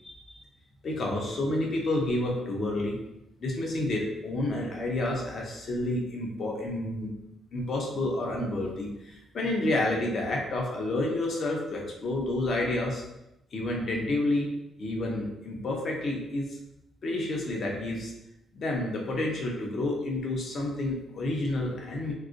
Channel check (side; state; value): both; normal; correlation 0.71